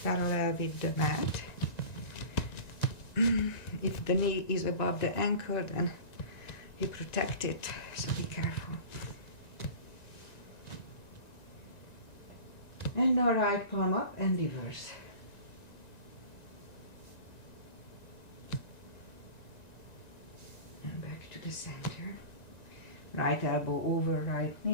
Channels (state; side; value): late; right; 1.9 ms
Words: with the mat. If the knee is above the ankle, then you protect it, so be careful. And now right palm up and reverse. And back to the center. Right elbow over right